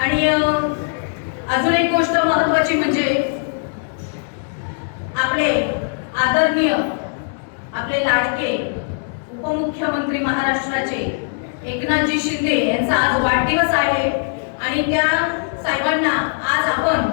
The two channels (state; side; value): silent; right; digital silence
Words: अजून एक गोष्ट महत्त्वाची म्हणजे आपले आदरणीय, आपले लाडके उपमुख्यमंत्री महाराष्ट्राचे एकनाथजी शिंदे यांचा आज वाढदिवस आहे। आणि त्या साहेबांना आज आपण